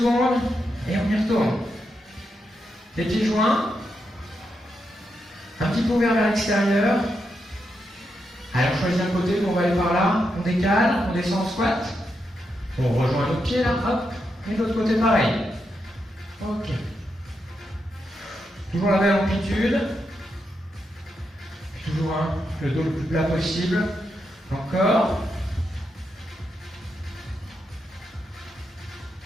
Et on y retourne. Les pieds joints. Un petit peu ouvert vers l'extérieur. Allez, on choisit un côté, on va aller par là. On décale, on descend en squat. On rejoint notre pied là, hop. Et de l'autre côté, pareil. Ok. Toujours la même amplitude. Toujours le dos le plus plat possible. Encore.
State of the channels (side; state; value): both; normal; correlation 0.84